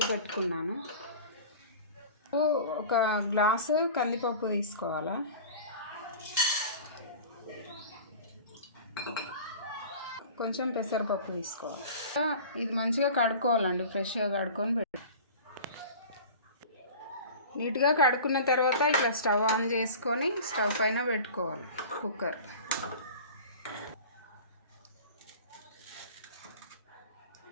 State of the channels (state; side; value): inverted; both; correlation -0.39